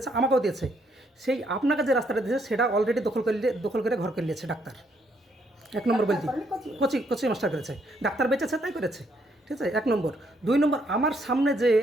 আমাকেও দিয়েছে, সেই আপনাকে যে রাস্তাটা দিয়েছে সেটা অলরেডি দখল করে ঘর করে নিয়েছে ডাক্তার। 1 নম্বর বলছি, কোচি মাস্টার করেছে, ডাক্তার বেঁচেছে তাই করেছে, ঠিক আছে? 1 নম্বর। 2 নম্বর, আমার সামনে যে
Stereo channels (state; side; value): normal; both; correlation 0.72